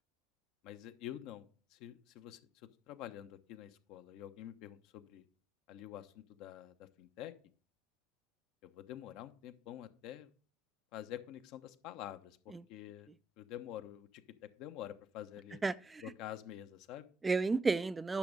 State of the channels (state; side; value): normal; both; correlation 0.78